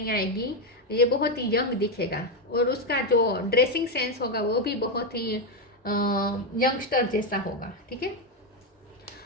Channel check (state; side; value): normal; both; correlation 0.07